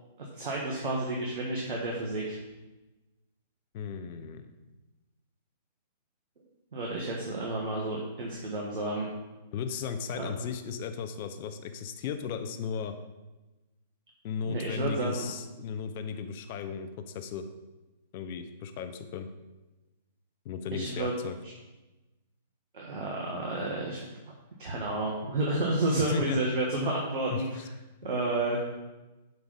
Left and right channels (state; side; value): inverted; both; correlation -0.37